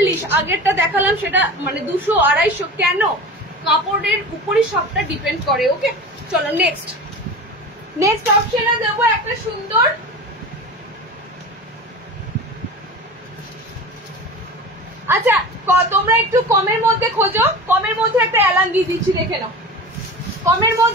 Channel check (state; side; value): normal; both; correlation 0.33